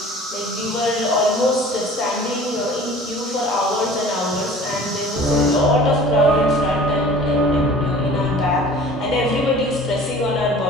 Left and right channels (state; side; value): normal; both; correlation 0.45